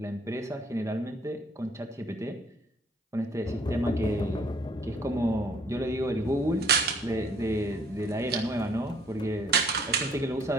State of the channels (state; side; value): normal; both; correlation 0.60